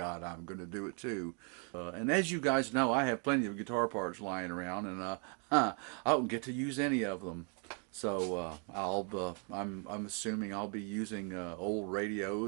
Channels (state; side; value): quieter; left; 39.3 dB